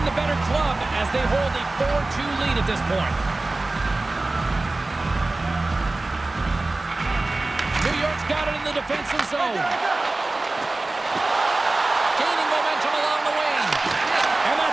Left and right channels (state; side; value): quieter; left; 3.0 dB